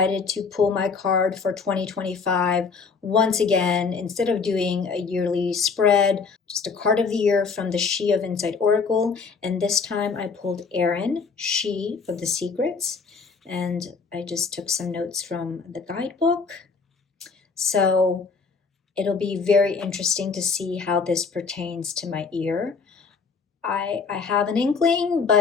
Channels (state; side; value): quieter; right; 5.1 dB